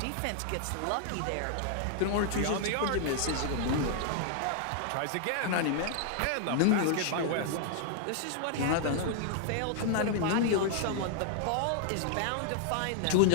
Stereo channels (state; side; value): different; both; correlation 0.00